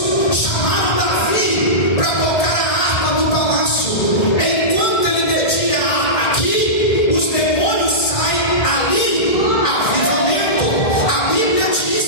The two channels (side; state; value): right; late; 2.0 ms